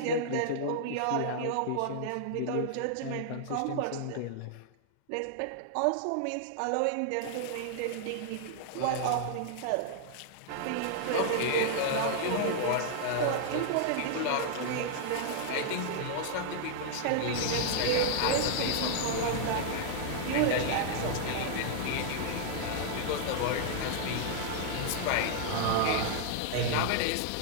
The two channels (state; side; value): different; both; correlation -0.01